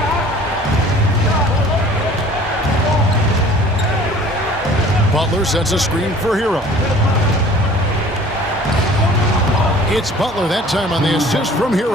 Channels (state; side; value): normal; both; correlation 0.49